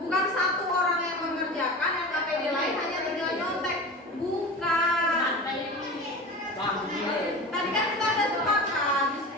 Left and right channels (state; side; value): normal; both; correlation 0.32